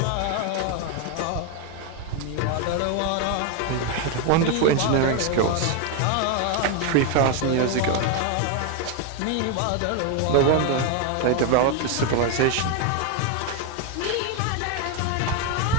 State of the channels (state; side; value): different; both; correlation 0.01